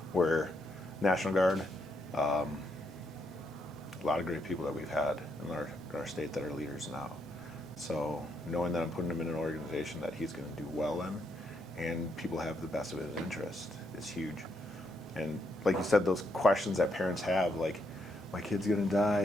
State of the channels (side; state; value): both; normal; correlation 0.77